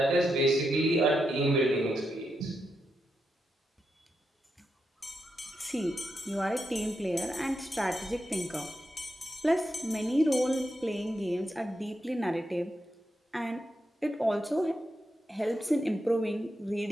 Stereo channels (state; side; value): normal; both; correlation 0.85